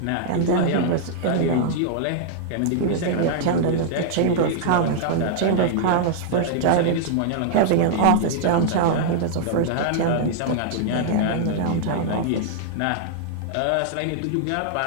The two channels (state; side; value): different; both; correlation -0.01